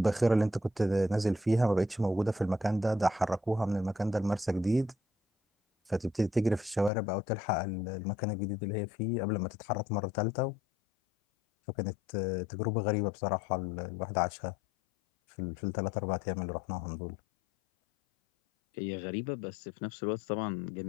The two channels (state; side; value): drops out; right; at 6.9 s